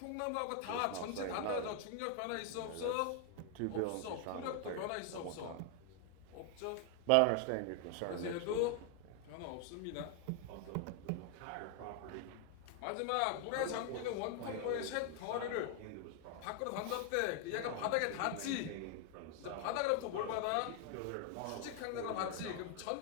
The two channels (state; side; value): different; both; correlation 0.00